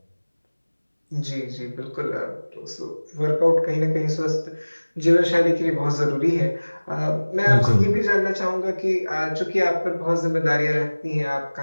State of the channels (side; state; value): both; inverted; correlation -1.00